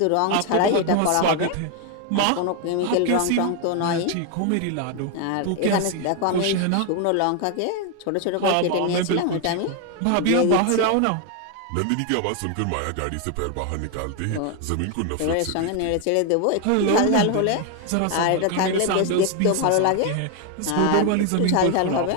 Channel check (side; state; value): both; different; correlation 0.01